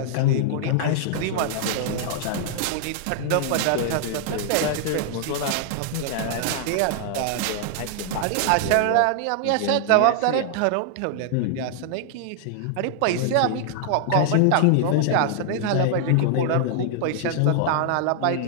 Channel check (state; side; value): different; both; correlation -0.01